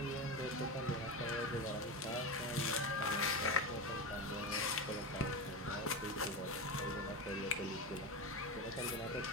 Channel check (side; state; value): both; normal; correlation 0.19